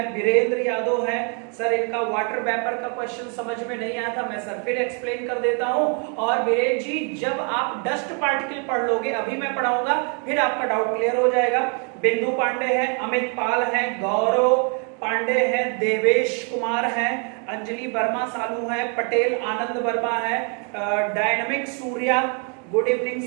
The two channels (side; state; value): left; quieter; 39.3 dB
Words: वीरेंद्र यादव है, सर इनका वाटर वेपर का क्वेश्चन समझ में नहीं आया था, मैं सर फिर एक्सप्लेन कर देता हूं। और वीरेंद्र जी जब आप डस्ट पार्टिकल पढ़ लोगे, अभी मैं पढ़ाऊंगा, फिर आपका डाउट क्लियर हो जाएगा। बिंदु पांडे है, अमित पाल है, गौरव पांडे है, देवेश कुमार है, अंजलि वर्मा सालू है, पटेल आनंद वर्मा है, dynamic Surya, good evening